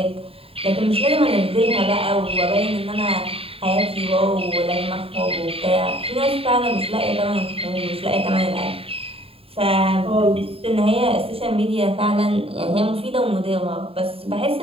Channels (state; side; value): late; left; 0.27 ms